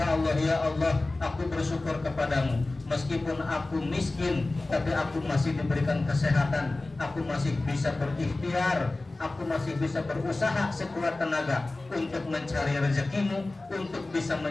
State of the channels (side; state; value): right; quieter; 3.0 dB